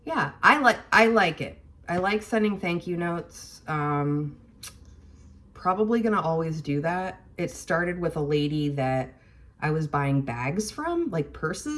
yeah, I like it. I like sending thank you notes. Probably gonna always do that. It started with a lady that I was buying bags from, like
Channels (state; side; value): identical; both; correlation 1.00